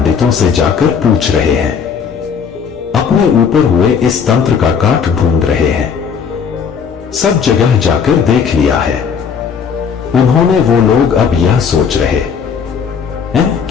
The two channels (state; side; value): quieter; right; 6.7 dB